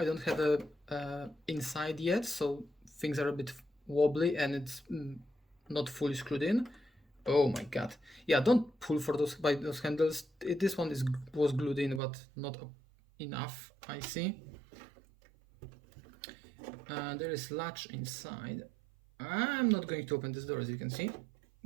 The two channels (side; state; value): left; drops out; at 12.0 s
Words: don't have a inside yet, so things are a bit wobbly and it's not fully screwed in. Oh my god. Yeah, don't pull for those by those handles. This one was glued in, but not enough, I see. There is latch inside. I'm not going to open this door, as you can see.